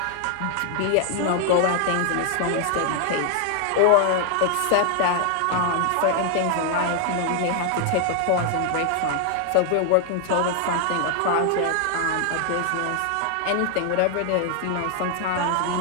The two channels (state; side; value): different; both; correlation 0.00